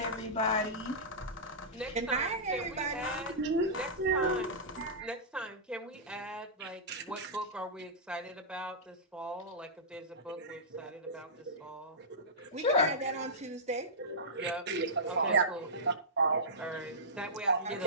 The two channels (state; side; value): normal; both; correlation -0.16